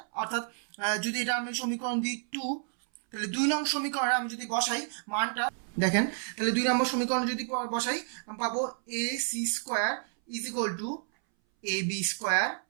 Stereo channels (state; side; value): silent; left; 58 dB below the other